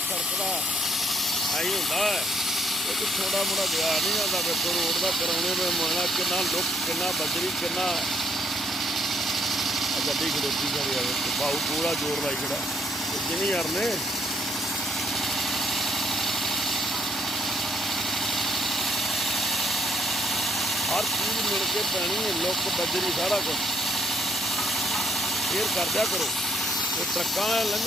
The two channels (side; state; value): both; normal; correlation 0.69